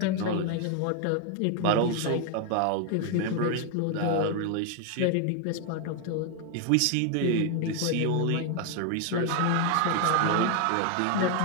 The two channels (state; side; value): different; both; correlation 0.00